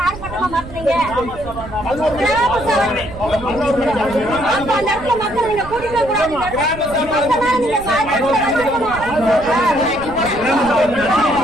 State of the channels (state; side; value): noise; right; rumble, 14 dB below the sound